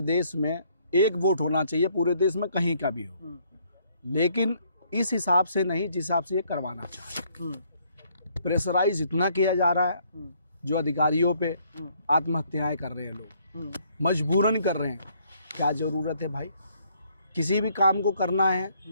देश में एक वोट होना चाहिए, पूरे देश में कहीं का भी हो, लेकिन इस हिसाब से नहीं जिस हिसाब से ये करवाना चाहिए। प्रेशराइज इतना किया जा रहा है, जो अधिकारियों पे आत्महत्याएं कर रहे हैं लोग, मजबूरन कर रहे हैं। क्या ज़रूरत है भाई? किसी भी काम को करना है,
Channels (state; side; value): inverted; both; correlation -0.67